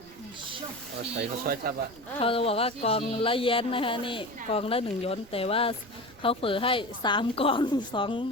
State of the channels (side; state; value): right; noise; rumble, 23 dB below the sound